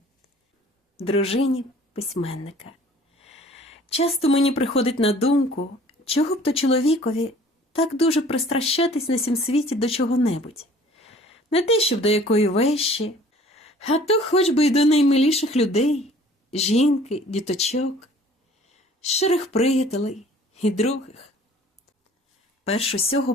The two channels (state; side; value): normal; both; correlation 0.51